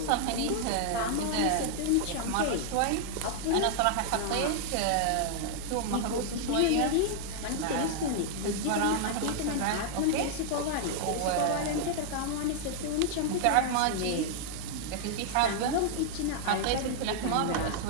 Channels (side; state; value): both; different; correlation 0.00